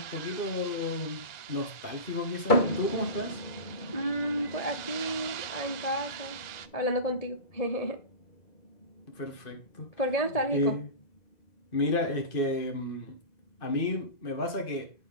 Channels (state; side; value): late; right; 2.0 ms